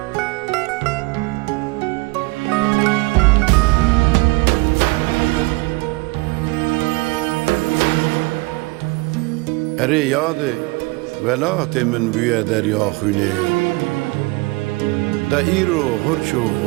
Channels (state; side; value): quieter; left; 24.2 dB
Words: اره یاد ولات من بوی دریا خونه دا ایرو هرچو